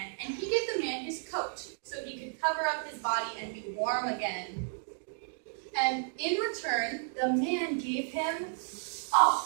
and he gave the man his coat so he could cover up his body and be warm again. And in return, the man gave him a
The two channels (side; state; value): left; silent; digital silence